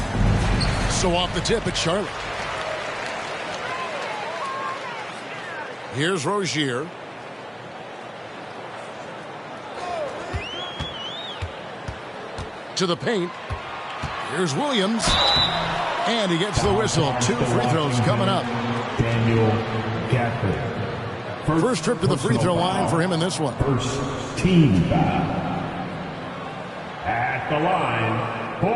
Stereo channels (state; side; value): identical; both; correlation 1.00